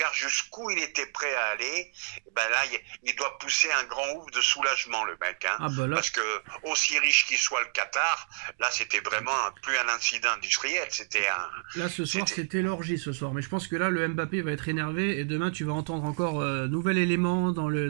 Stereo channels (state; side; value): silent; left; digital silence